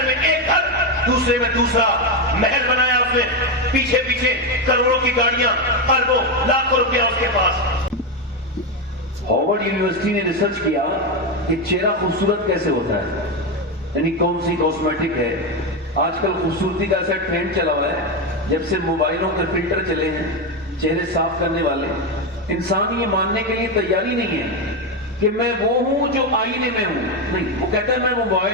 میں ایک گھر، دوسرے میں دوسرا محل بنایا اس نے، پیچھے پیچھے کروڑوں کی گاڑیاں، اربوں لاکھوں روپیہ اس کے پاس۔ ہارورڈ یونیورسٹی نے ریسرچ کیا کہ چہرہ خوبصورت کیسے ہوتا ہے، یعنی کون سی کاسمیٹک ہے۔ آج کل خوبصورتی کا ایسا ٹرینڈ چلا ہوا ہے، جب سے موبائلوں کے فلٹر چلے ہیں چہرے صاف کرنے والے، انسان یہ ماننے کے لیے تیاری نہیں ہے کہ میں وہ ہوں جو آئینے میں ہوں، نہیں، وہ کہتا ہے میں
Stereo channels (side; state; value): both; normal; correlation 0.10